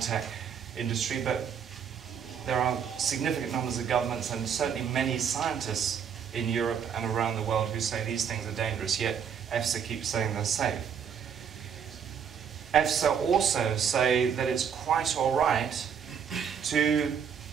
industry, but there are significant numbers of governments and certainly many scientists in Europe and around the world who say these things are dangerous, yet EFSA keeps saying they're safe. EFSA also say that it's quite all right to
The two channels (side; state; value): left; quieter; 7.6 dB